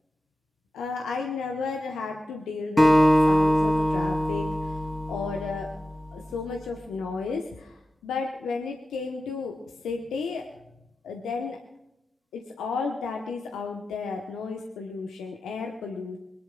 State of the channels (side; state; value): both; normal; correlation 0.93